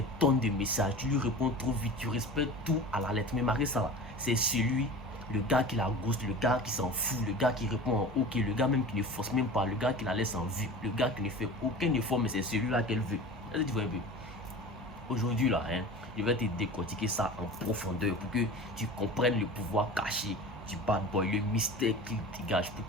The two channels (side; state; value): both; normal; correlation 0.36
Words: tonnes de messages, tu lui réponds trop vite, tu respectes tout à la lettre. Mais malgré ça, c'est celui, le gars qui la ghost, le gars qui s'en fout, le gars qui répond en ok, le gars même qui ne force même pas, le gars qui la laisse en vue, le gars qui ne fait aucun effort, mais c'est celui-là qu'elle veut. Est-ce que tu vois un peu? Aujourd'hui là, je vais te décortiquer ça en profondeur pour que tu comprennes le pouvoir caché du bad boy, le mystère qu'il dégage, pour